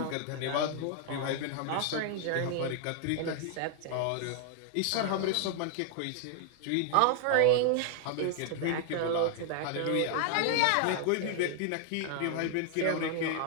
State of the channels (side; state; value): both; different; correlation 0.00